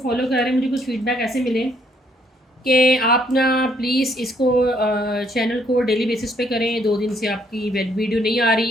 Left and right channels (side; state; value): both; normal; correlation 0.68